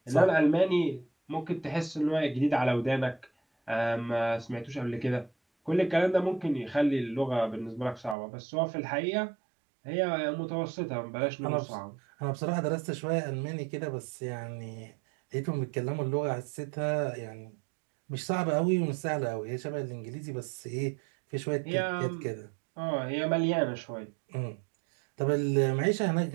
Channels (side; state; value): left; drops out; at 8.2 s